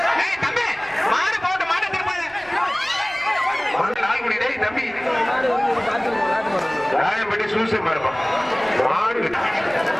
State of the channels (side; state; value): right; noise; rumble, 25 dB below the sound